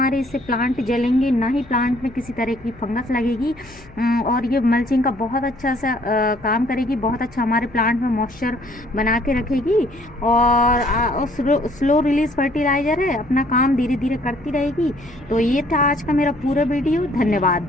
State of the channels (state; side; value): noise; left; hum, 22 dB below the sound